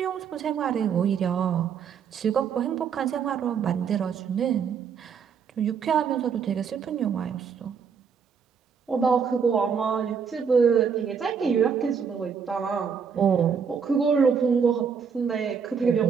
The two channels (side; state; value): left; quieter; 6.6 dB